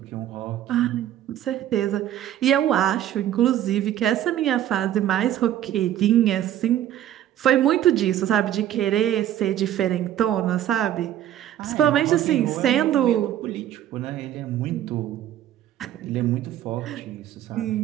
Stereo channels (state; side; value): quieter; left; 11.8 dB